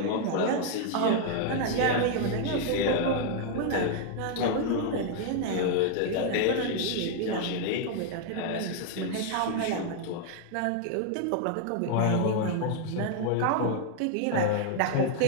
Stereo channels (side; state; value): both; different; correlation 0.00